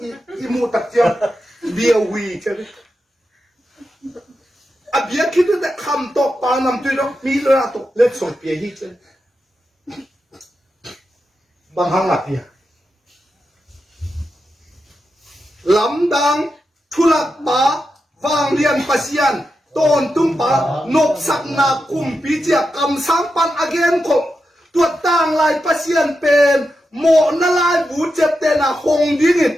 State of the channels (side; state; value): both; normal; correlation 0.88